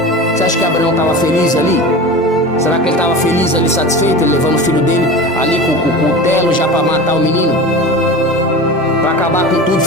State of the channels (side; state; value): both; normal; correlation 0.32